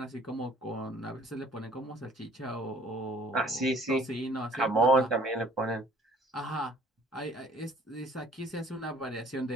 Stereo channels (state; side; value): normal; both; correlation 0.55